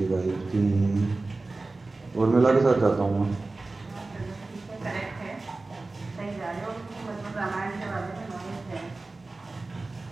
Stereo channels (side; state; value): left; quieter; 3.3 dB